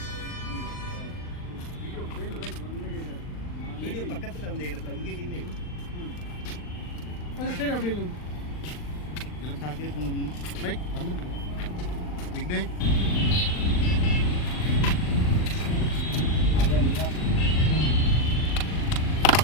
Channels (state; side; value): late; right; 39 ms